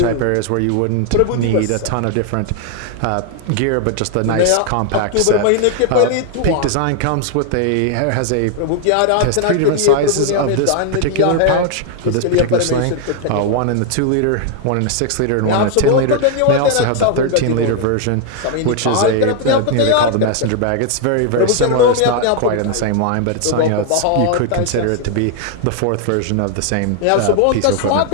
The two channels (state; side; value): different; both; correlation 0.00